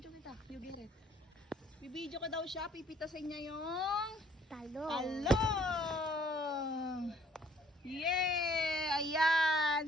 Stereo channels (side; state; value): both; normal; correlation 0.60